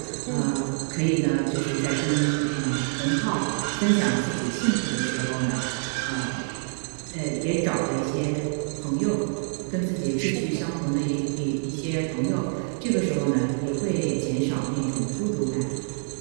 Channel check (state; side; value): silent; left; digital silence